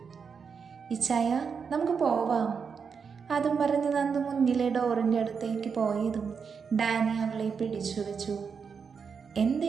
ഇച്ചായ, നമുക്ക് പോവാം. അതും പറഞ്ഞ് നന്ദു മുന്നിലെ ഡോറിൻ്റെ അടുത്തേക്ക് പോയതും ഡാനി അവളെ പിടിച്ചു വെച്ചു. എന്താ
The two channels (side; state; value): left; quieter; 6.0 dB